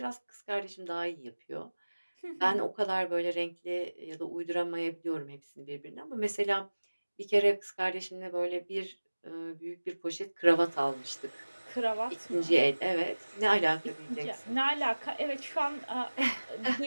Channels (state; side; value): inverted; both; correlation -1.00